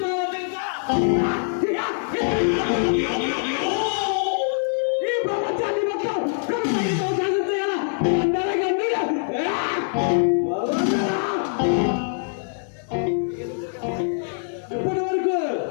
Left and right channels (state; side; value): silent; right; digital silence